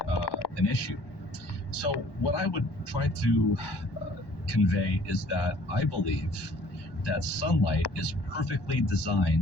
issue. So what I would try to convey is that I believe that sunlight is perfectly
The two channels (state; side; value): late; right; 1.1 ms